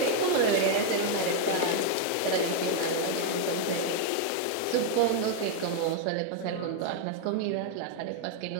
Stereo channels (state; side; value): different; both; correlation 0.00